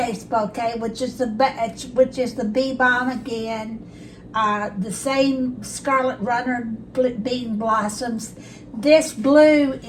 bouquet, which is the Bee Balm again, the same Scarlet Runner Bean Blossoms. This blue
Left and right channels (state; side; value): identical; both; correlation 1.00